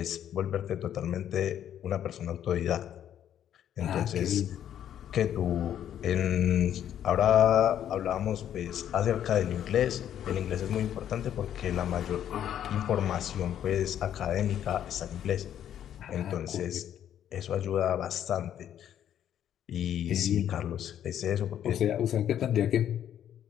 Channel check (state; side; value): quieter; right; 10.3 dB